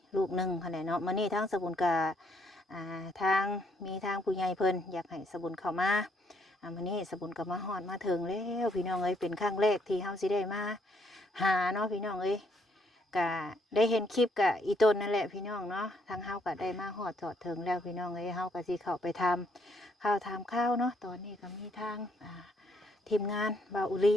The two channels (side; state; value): both; normal; correlation 0.70